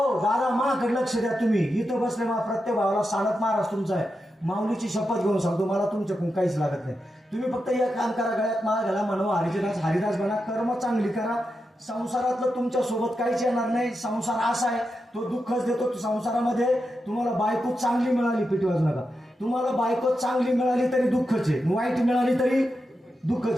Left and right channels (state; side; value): normal; both; correlation 0.88